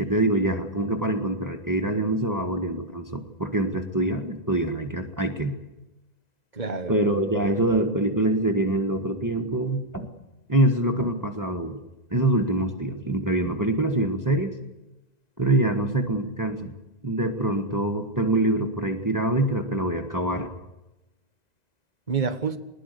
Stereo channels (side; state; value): right; late; 2.0 ms